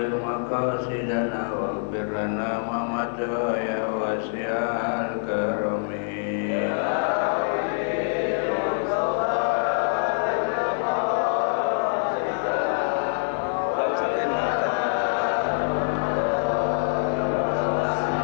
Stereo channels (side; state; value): right; silent; digital silence